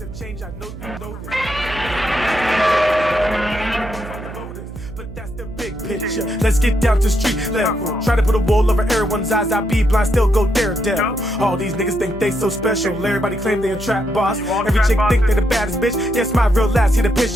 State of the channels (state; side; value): noise; right; hum, 12 dB below the sound